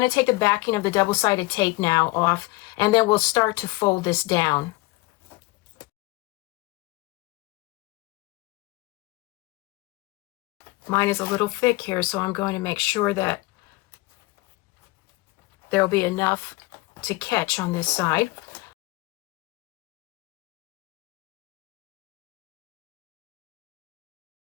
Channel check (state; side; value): quieter; right; 22.2 dB